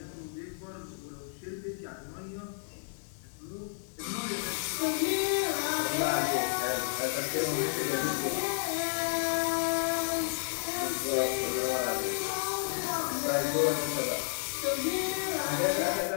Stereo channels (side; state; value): right; silent; digital silence